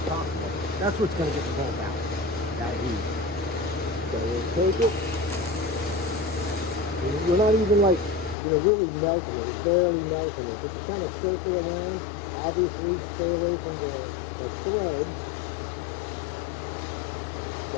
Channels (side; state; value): right; drops out; at 8.3 s